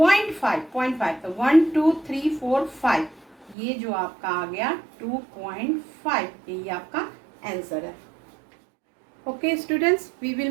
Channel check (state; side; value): drops out; left; at 3.6 s